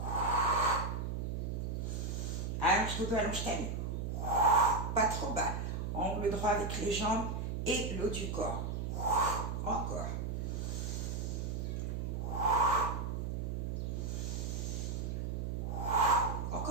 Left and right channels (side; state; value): right; noise; hum, 2 dB below the sound